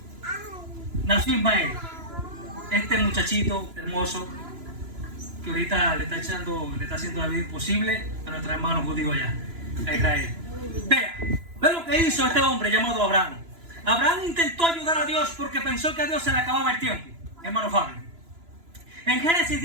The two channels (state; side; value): late; left; 3.0 ms